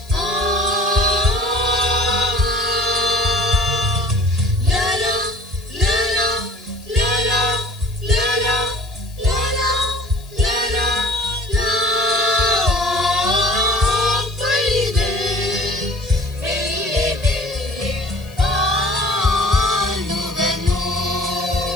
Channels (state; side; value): noise; left; hiss, 24 dB below the sound